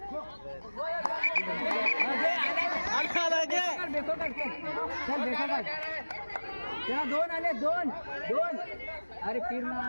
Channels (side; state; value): both; inverted; correlation -1.00